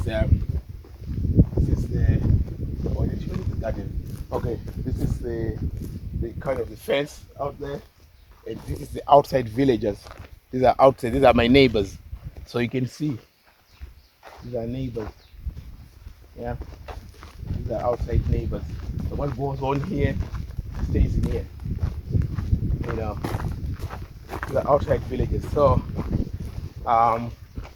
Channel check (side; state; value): both; identical; correlation 1.00